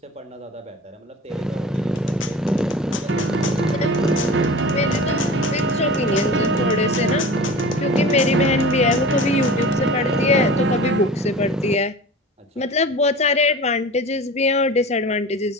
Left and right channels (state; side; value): normal; both; correlation 0.36